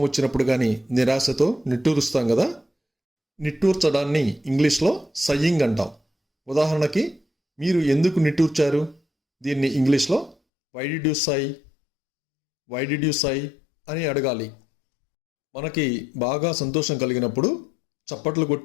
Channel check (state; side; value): drops out; right; at 10.4 s